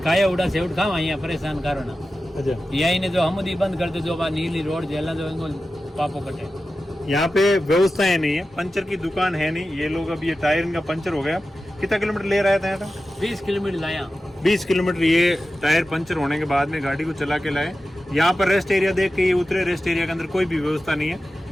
खाया उड़ा से उठ खावा यहाँ परेशान करो ना। अच्छा, यही ने जो हमदी बंद कर दो, जो बात नीली रोड जेला जो इनको पापो कटे। यहाँ पे व्यवस्थाएं नहीं है, पंचर की दुकान है नहीं। ये लोग अब ये टायर इनका पंचर हो गया, कितना किलोमीटर ले रहा था यहाँ? 20 किलोमीटर लाया। 20 किलोमीटर ये टायर पंचर होने के बाद में गाड़ी को चला के लाए। यहाँ पर रेस्ट एरिया देख के ये उतरे, रेस्ट एरिया के अंदर कोई भी व्यवस्था नहीं है,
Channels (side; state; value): both; normal; correlation 0.93